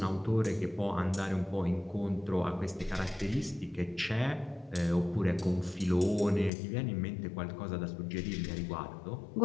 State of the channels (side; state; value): right; drops out; at 6.5 s